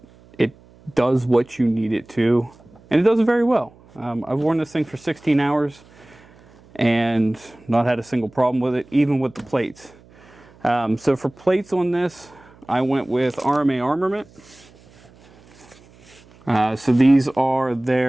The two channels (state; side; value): noise; right; hum, 26 dB below the sound